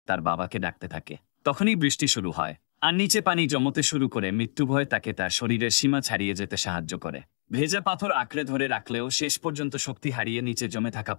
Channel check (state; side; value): silent; right; digital silence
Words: তার বাবাকে ডাকতে থাকে। তখনই বৃষ্টি শুরু হয় আর নিচে পানি জমতে শুরু করে। মৃত্যু ভয় তাকে তার শরীরের সীমা ছাড়িয়ে যেতে সাহায্য করে। ভেজা পাথর আঁকড়ে ধরে রাখলেও শেষ পর্যন্ত শক্তি হারিয়ে নিচে জমে থাকা